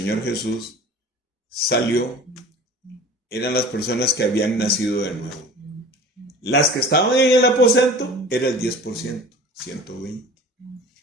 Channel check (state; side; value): normal; both; correlation 0.41